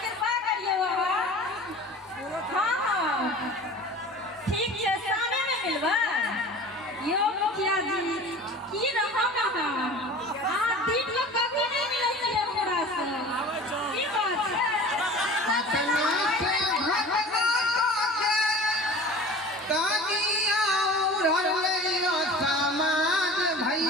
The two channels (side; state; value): both; normal; correlation 0.40